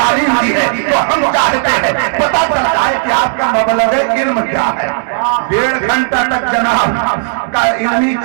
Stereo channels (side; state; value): left; silent; digital silence